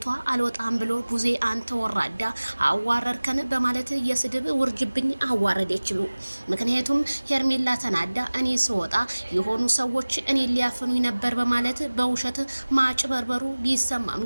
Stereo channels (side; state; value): both; inverted; correlation -1.00